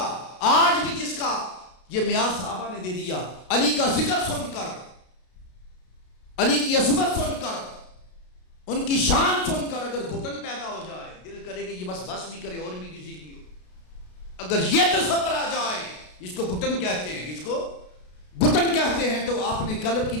آج بھی جس کا یہ معیار صحابہ نے دے دیا، علی کا ذکر سن کر، علی کی عظمت سن کر، ان کی شان سن کر اگر گھٹن پیدا ہو جائے، دل کرے کہ یہ بس بھی کرے اور بھی کسی کی ہو، اگر یہ تصور آ جائے، اس کو گھٹن کہتے ہیں، اس کو گھٹن کہتے ہیں، تو آپ نے قلب کی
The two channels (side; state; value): right; late; 33 ms